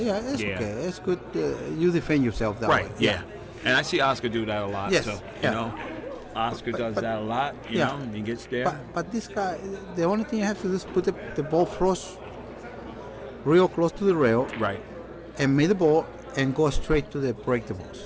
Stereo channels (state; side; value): identical; both; correlation 1.00